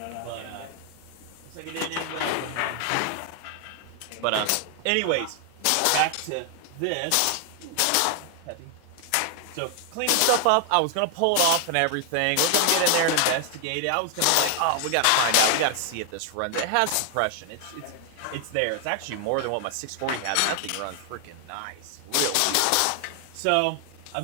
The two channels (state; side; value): different; both; correlation 0.00